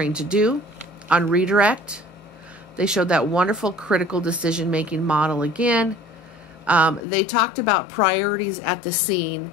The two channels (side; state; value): right; drops out; at 7.1 s